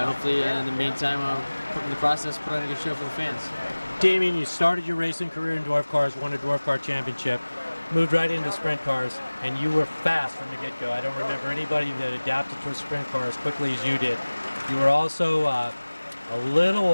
in the meantime, put in the process, put on a good show for the fans. Damian, you started your racing career in dwarf cars, won a dwarf car championship, moved right into sprint cars, and you were fast from the get-go. I don't remember anybody that adapted to a sprint car as quickly as you did. You were also a little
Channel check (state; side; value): inverted; both; correlation -1.00